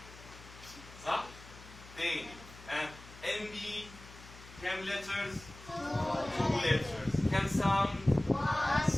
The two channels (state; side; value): noise; left; hum, 18 dB below the sound